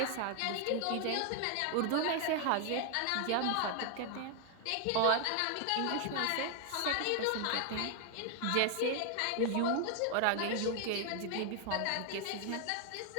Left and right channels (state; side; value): different; both; correlation 0.00